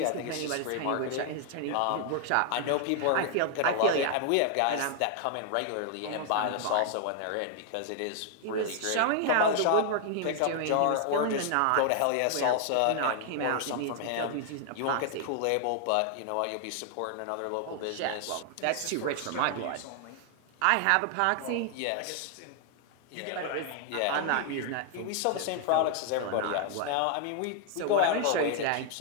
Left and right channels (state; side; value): different; both; correlation 0.00